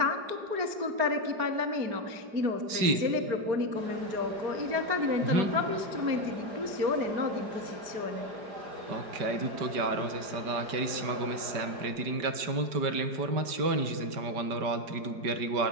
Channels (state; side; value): late; left; 5.2 ms